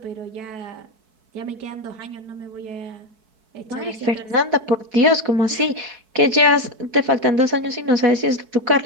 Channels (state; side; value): late; left; 4.6 ms